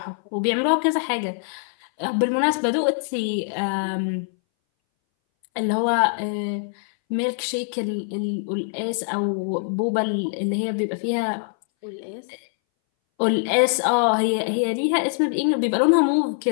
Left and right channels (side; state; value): right; silent; 61 dB below the other